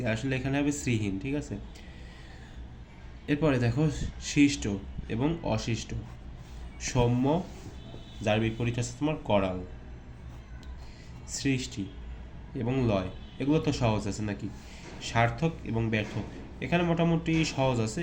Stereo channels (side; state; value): both; identical; correlation 1.00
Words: আসলে এখানে হবে শ্রীহীন, ঠিক আছে। এরপরে দেখো শিষ্ট এবং অশিষ্ট, সৌম্য যার বিপরীত আছে তোমার করাল, সৃষ্টি এবং লয়, এগুলো তো সহজ আছে নাকি। সার্থক এবং ব্যর্থ, এখানে মোটামুটি সহজ